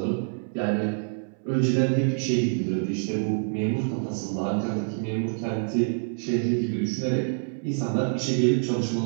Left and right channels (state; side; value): silent; left; 61 dB below the other